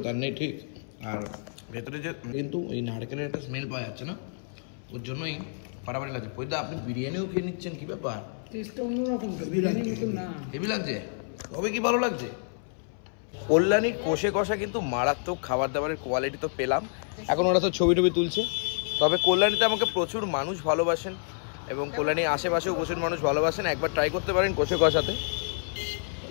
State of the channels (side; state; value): right; silent; 59 dB below the other